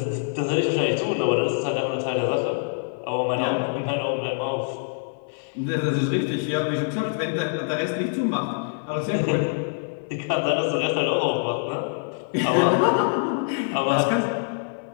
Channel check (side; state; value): right; silent; 59 dB below the other